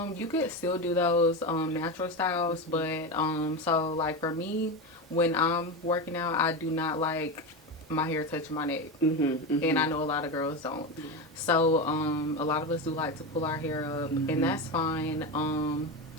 could still do those natural styles, but so like for me, when I'm working out, I do not like my hair touching my neck. And I know a lot of girls don't. Yeah. So a lot of us do like to pull our hair up, and that's fine.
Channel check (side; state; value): both; normal; correlation 0.18